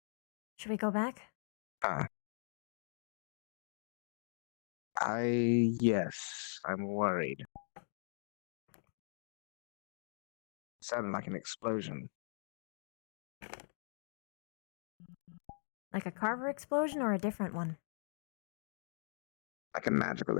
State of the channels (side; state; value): right; silent; digital silence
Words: Should we go back? Yes, I'm worried. Sounded like an explosion. Like a Carver explosion or a different one? Like a magical